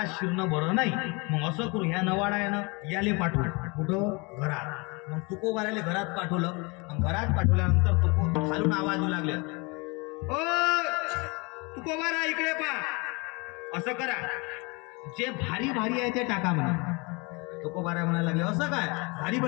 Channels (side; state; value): right; quieter; 28.5 dB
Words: शिरणं बरं नाही, मग असं करू, ह्या नवाडा आहे ना, याले पाठवू. कुठं? घरात. मग तुकोबारायला घरात पाठवलं. घरात पाठवल्यानंतर तुको खालून आवाज येऊ लागले, ओ तुकोबारा इकडे पा. असं करा, जे भारी भारी आहे ते टाका म्हणा. तुकोबाराय म्हणायला लागले, असं काय भारी